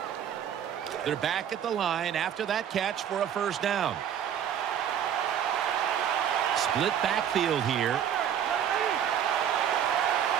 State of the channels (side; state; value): left; quieter; 9.3 dB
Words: They're back at the line after that catch for a first down. Split backfield here.